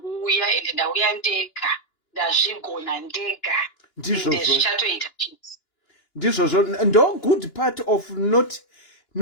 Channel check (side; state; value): right; late; 2.9 ms